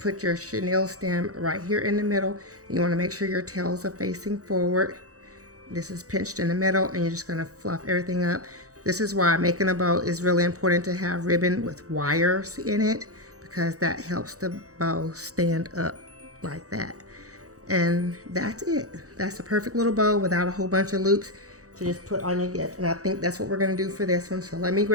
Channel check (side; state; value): left; late; 0.66 ms